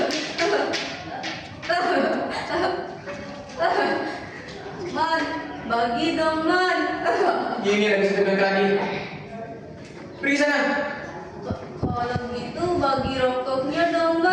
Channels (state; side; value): identical; both; correlation 1.00